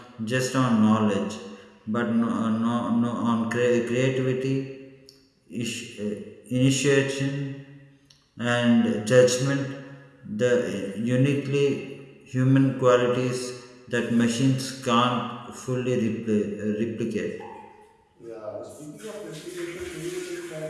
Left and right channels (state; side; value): identical; both; correlation 1.00